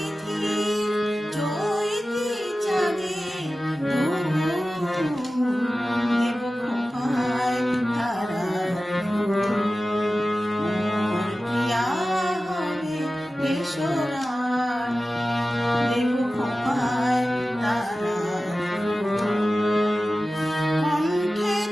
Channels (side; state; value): both; normal; correlation 0.95